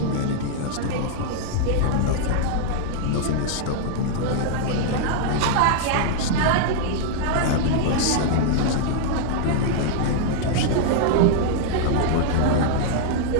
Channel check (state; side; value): different; both; correlation -0.01